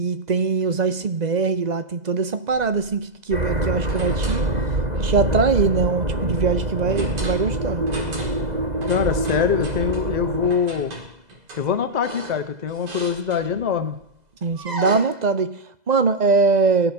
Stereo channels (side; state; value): left; late; 2.0 ms